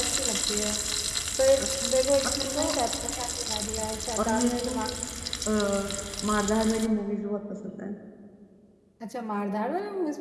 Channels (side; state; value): both; identical; correlation 1.00